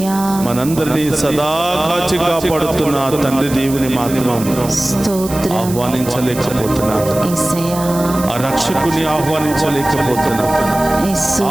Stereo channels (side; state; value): right; noise; hiss, 12 dB below the sound